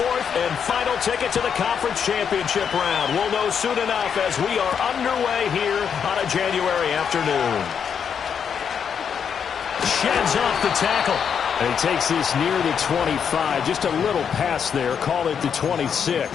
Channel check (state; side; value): quieter; right; 7.3 dB